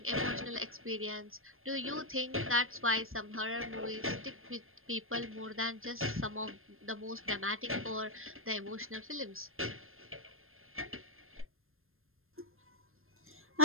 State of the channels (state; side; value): late; left; 0.60 ms